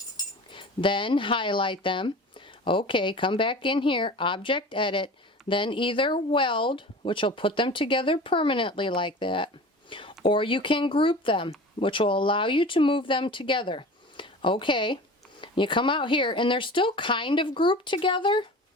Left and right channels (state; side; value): normal; both; correlation 0.37